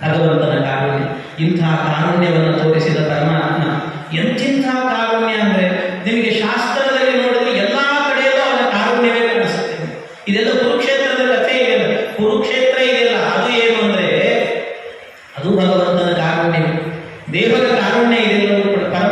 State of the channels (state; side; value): identical; both; correlation 1.00